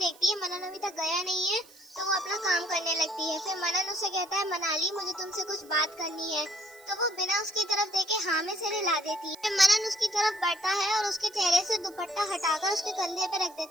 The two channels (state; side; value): noise; right; hiss, 24 dB below the sound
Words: है मनन अभी तक गया नहीं है, तो वो अपना काम करने लगती है। फिर मनन उसे कहता है मनाली मुझे तुमसे कुछ बात करनी है, तो वो बिना उसकी तरफ देखे हाँ में सिर हिला देती है। फिर मनन उसकी तरफ बढ़ता है और उसके चेहरे से दुपट्टा हटाकर उसके कंधे पे रख